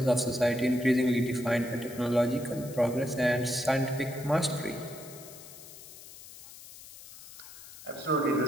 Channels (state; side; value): noise; left; hiss, 17 dB below the sound